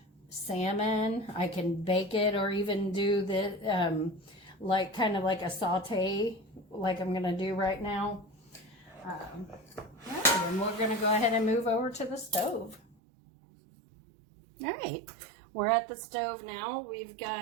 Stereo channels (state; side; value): drops out; left; at 13.0 s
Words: Salmon. I can bake it or even do the like kind of like a saute like I'm gonna do right now. Right, and we're gonna go ahead and move over to the stove. All right, we're at the stove now. We've